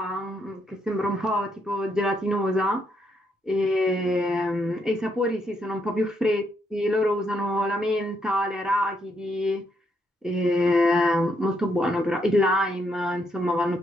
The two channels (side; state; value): both; normal; correlation 0.76